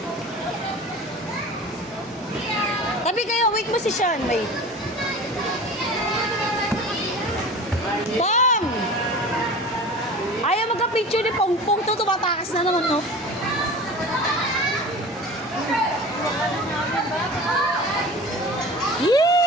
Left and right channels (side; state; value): both; normal; correlation 0.37